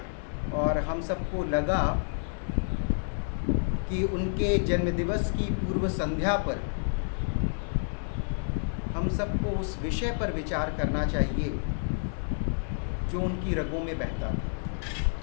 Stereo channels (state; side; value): silent; right; digital silence